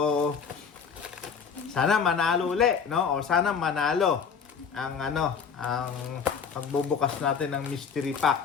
sana manalo uli, no? O sana manalo ang pagbubukas natin ng mystery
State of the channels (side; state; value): right; quieter; 6.3 dB